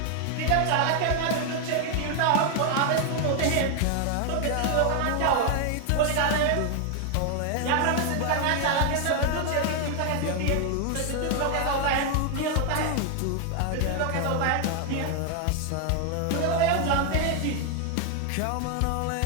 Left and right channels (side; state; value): both; different; correlation 0.00